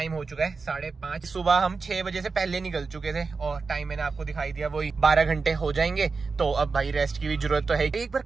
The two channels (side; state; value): left; quieter; 4.5 dB